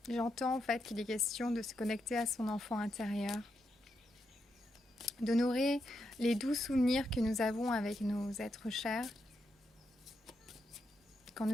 J'entends en fait qu'il est question de se connecter à son enfant intérieur, d'honorer les doux souvenirs que nous avons avec nos êtres chers quand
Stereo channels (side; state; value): both; normal; correlation 0.83